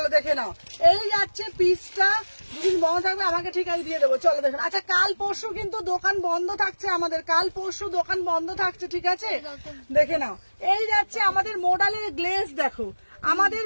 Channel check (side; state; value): both; inverted; correlation -1.00